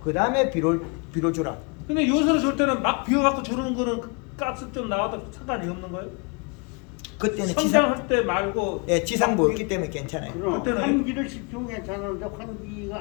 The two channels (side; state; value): right; quieter; 33.0 dB